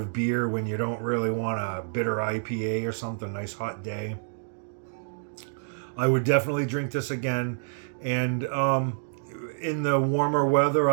beer when you don't really want a bitter IPA or something. Nice hot day. I would definitely drink this again, and in the warmer weather,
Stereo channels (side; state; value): left; silent; digital silence